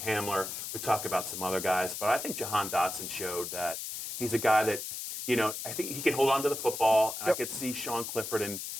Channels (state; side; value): noise; left; hiss, 6 dB below the sound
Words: we talk about some other guys, but I think Jahan Dotson showed that he's a guy that, you know, I think he can hold on to the football. And I could see Sean Clifford and